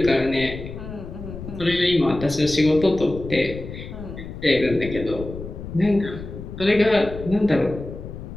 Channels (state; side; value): noise; left; rumble, 10 dB below the sound